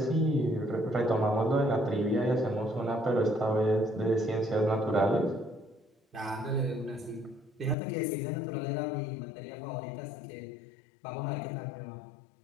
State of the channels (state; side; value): drops out; right; at 7.8 s